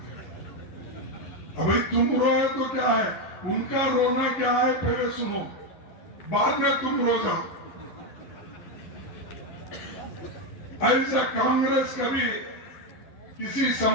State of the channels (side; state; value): right; late; 11 ms